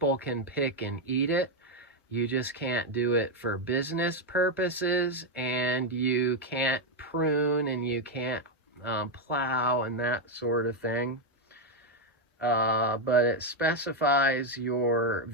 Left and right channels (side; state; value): both; normal; correlation 0.04